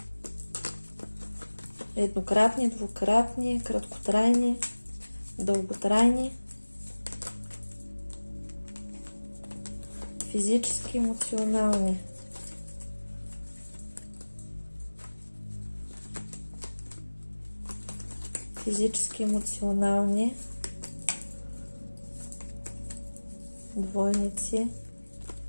Еднократни, двукратни, краткотрайни, дълготрайни, физически, емоционални. Физически, емоционални двойници.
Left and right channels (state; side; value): inverted; both; correlation -1.00